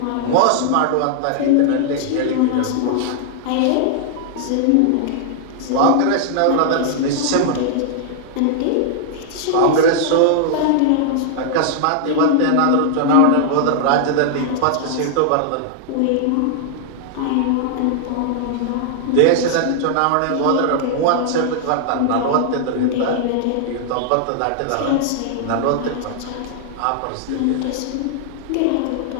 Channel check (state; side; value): different; both; correlation -0.01